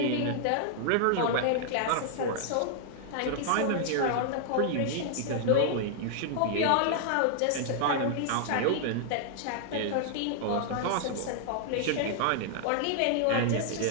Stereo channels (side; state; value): both; different; correlation -0.01